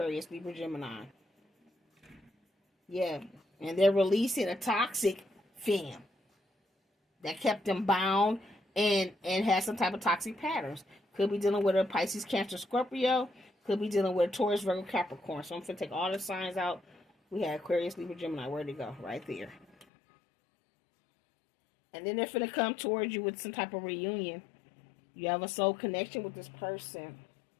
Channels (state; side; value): drops out; right; at 19.9 s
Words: Libra, Gemini. Yeah, and they're releasing a toxic femme that kept them bound and has some type of toxic patterns. Could be dealing with a Pisces, Cancer, Scorpio. Could be dealing with a Taurus, Virgo, Capricorn. So I'm going to take all the signs out. We had Aquarius, Libra, Gemini. Where'd it go? Right there. And then they're going to come towards you with some type of reunion. You have a soul connection with this person.